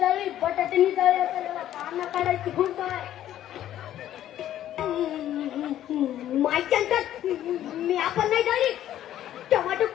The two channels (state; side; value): quieter; right; 12.1 dB